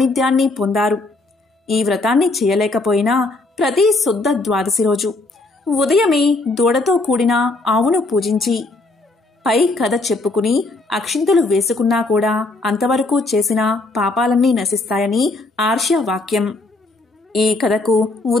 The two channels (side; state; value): right; quieter; 3.1 dB